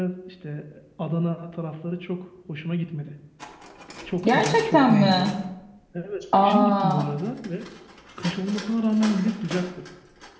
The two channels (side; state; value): both; identical; correlation 1.00